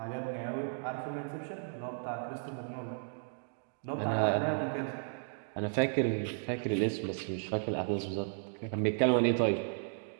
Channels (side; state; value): left; silent; digital silence